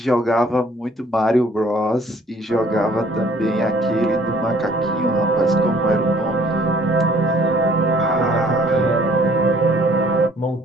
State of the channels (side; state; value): both; normal; correlation 0.58